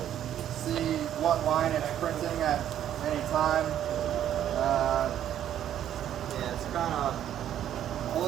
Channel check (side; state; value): left; quieter; 10.8 dB